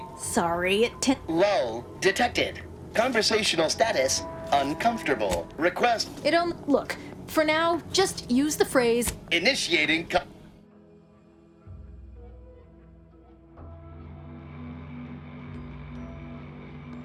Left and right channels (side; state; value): both; identical; correlation 1.00